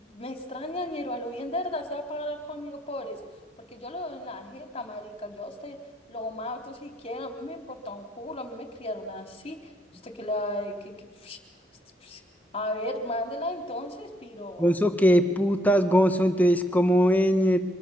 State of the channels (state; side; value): normal; both; correlation 0.73